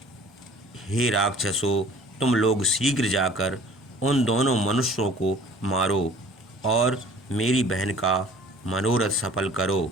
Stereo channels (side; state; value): both; normal; correlation 0.49